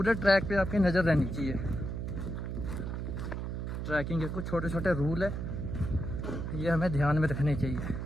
ट्रैक पे आपकी नज़र रहनी चाहिए। ट्रैकिंग के कुछ छोटे छोटे रूल है, ये हमें ध्यान में रखने चाहिए।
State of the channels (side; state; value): right; noise; hum, 4 dB below the sound